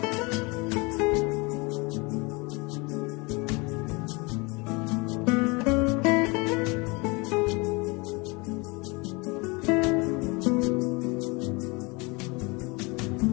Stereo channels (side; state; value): right; quieter; 27.4 dB